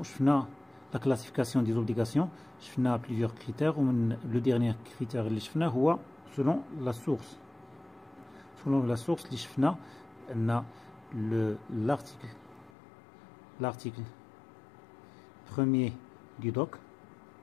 لا كلاسيفيكاسيون دي زوبليغاسيون، شفنا بليزيور كريتير، ومن لو ديرنيير كريتير اللي شفناه هو سولون لا سورس. Selon la source, l'article premier du doc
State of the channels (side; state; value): right; drops out; at 12.7 s